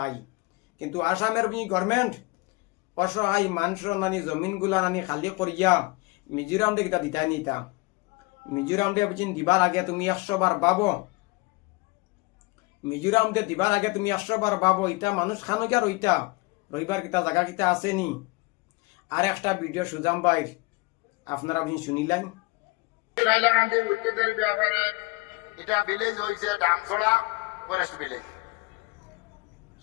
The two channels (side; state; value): right; quieter; 25.2 dB